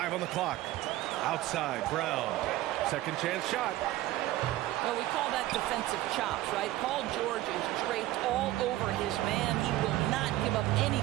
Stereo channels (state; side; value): quieter; left; 15.9 dB